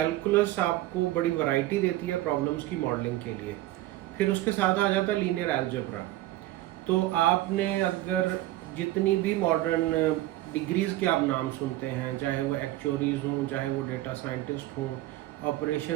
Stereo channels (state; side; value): quieter; left; 16.0 dB